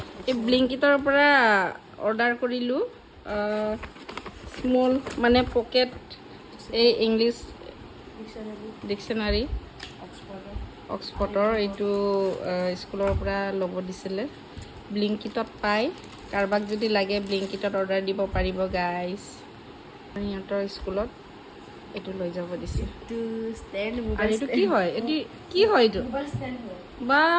এই ব্লিংকিটৰ পৰা অৰ্ডাৰ কৰিলোঁ স্মল মানে পকেট এই ইংলিছ ডিকশ্যনাৰী অক্সফৰ্ডৰ এইটো স্কুলৰ পৰা ল'ব দিছিলে ব্লিংকিটত পায় কাৰোবাক যদি লাগে ব্লিংকিটত অৰ্ডাৰ দিব পাৰিব গাইজ সিহঁতৰ স্কুলত এইটো লৈ যাব দিছে আৰু এইটো কি হয় এইটো কি হয় এইটো বা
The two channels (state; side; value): identical; both; correlation 1.00